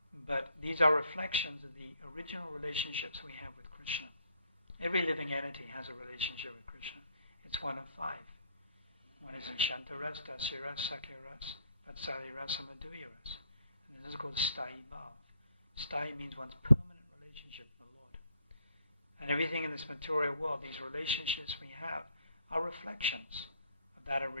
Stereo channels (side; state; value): both; inverted; correlation -0.68